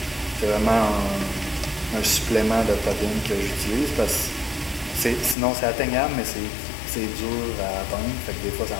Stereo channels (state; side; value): drops out; right; at 5.4 s